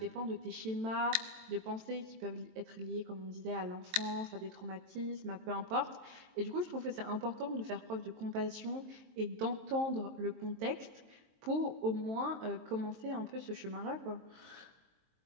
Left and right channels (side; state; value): left; late; 23 ms